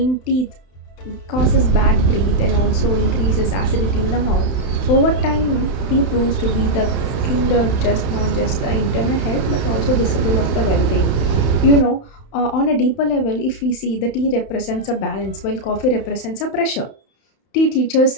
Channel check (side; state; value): right; late; 31 ms